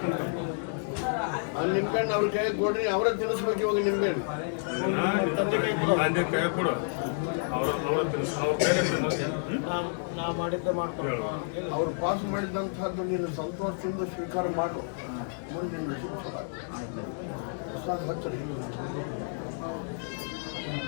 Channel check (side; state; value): right; silent; digital silence